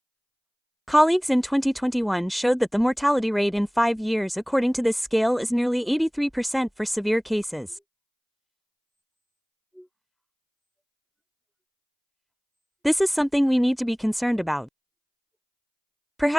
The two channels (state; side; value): identical; both; correlation 1.00